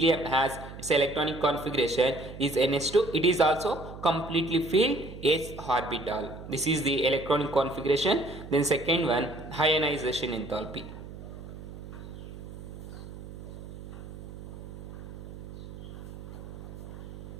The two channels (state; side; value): noise; right; hum, 12 dB below the sound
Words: has its electronic configuration is NH2. It is also completely filled s orbital. This is the electronic configuration. Then second one, ionization enthalpy.